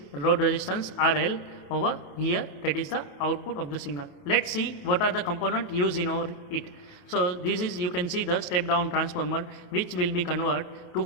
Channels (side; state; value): right; late; 28 ms